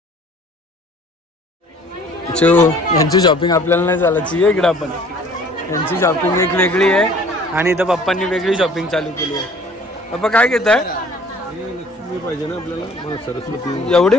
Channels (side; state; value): both; normal; correlation 0.52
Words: यांची शॉपिंग आपल्याला नाही चालायची आहे इकडं. आपण यांची शॉपिंग एक वेगळी आहे आणि इथं पप्पांनी वेगळी शॉपिंग चालू केली आहे. पप्पा काय घेत आहे? लक्ष्मी पाहिजे ना आपल्याला. सरस्वती एवढी